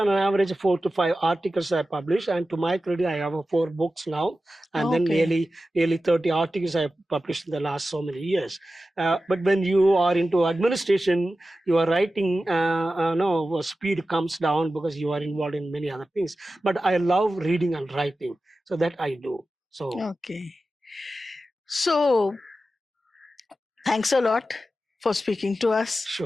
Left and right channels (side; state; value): both; normal; correlation 0.93